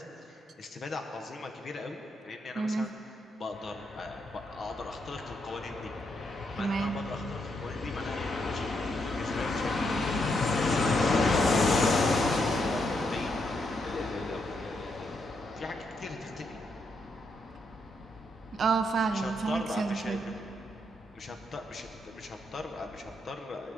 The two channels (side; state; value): both; normal; correlation 0.79